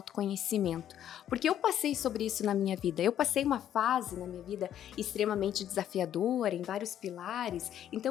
Porque eu passei sobre isso na minha vida. Eu passei uma fase na minha vida extremamente desafiadora, em vários pilares.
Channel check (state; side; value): quieter; right; 10.7 dB